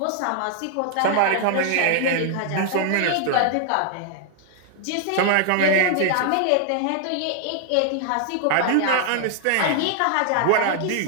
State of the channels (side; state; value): both; different; correlation 0.00